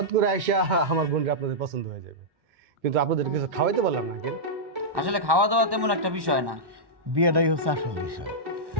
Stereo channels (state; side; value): late; left; 1.1 ms